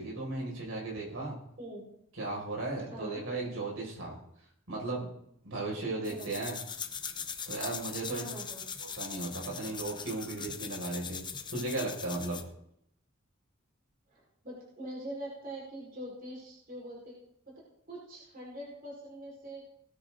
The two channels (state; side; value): normal; both; correlation 0.11